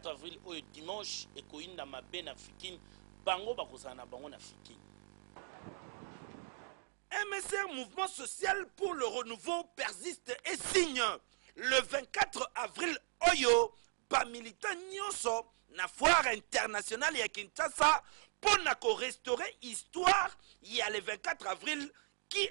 avril au dimanche et Koinda Mabe na Fikine bango bakozana bango na Fikine. MSR Mouvement Social pour le Renouveau persiste et signe le 24 avril Oyo ba militant nyonso na foire internationale ya Kinshasa pour restaurer histoire il y a le 24 avril qui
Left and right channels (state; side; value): silent; left; 52 dB below the other